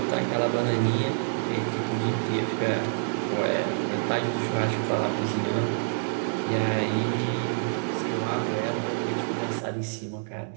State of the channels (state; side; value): silent; left; 60 dB below the other